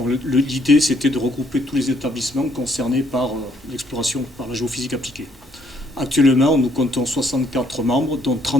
l'idée, c'était de regrouper tous les établissements concernés par l'exploration, par la géophysique appliquée. Actuellement, nous comptons 64 membres, dont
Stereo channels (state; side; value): normal; both; correlation 0.68